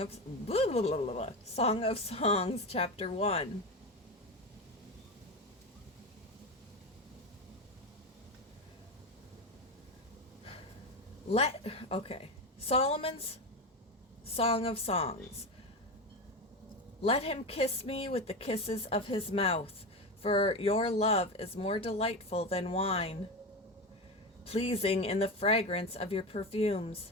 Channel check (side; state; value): both; normal; correlation 0.19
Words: chapter 1. Solomon's Song of Songs. Let him kiss me with the kisses of his mouth, for your love is more delightful than wine, pleasing in the fragrance of your